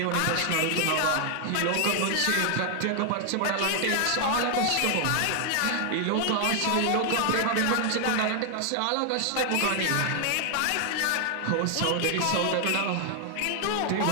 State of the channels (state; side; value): different; both; correlation 0.00